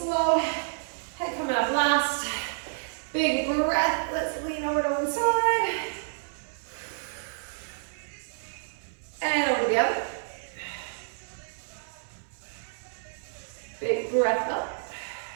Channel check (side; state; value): left; silent; 58 dB below the other